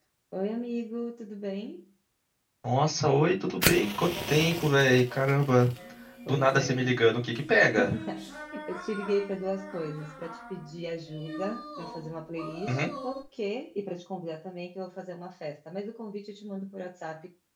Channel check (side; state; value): both; identical; correlation 1.00